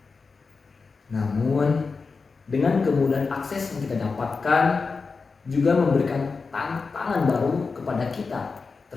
Namun, dengan kemudahan akses yang kita dapatkan juga memberikan tantangan baru kepada kita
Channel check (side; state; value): right; quieter; 4.6 dB